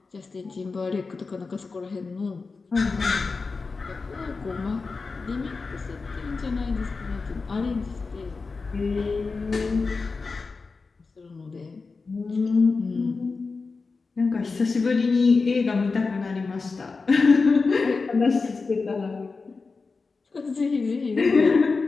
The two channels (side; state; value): right; quieter; 4.3 dB